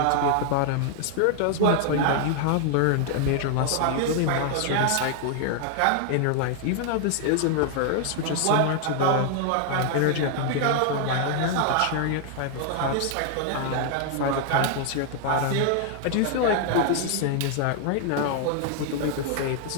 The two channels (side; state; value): both; different; correlation 0.00